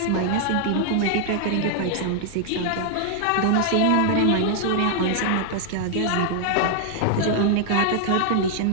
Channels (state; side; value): different; both; correlation 0.00